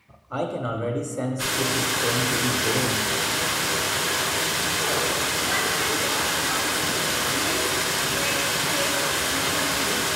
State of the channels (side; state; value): both; identical; correlation 1.00